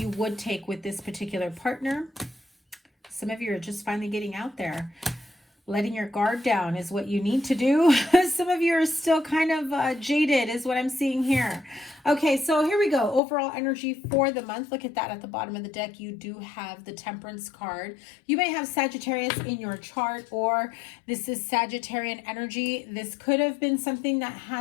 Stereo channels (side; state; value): right; drops out; at 13.2 s